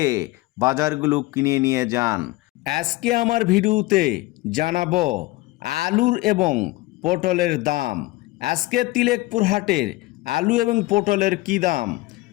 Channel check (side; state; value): right; quieter; 19.8 dB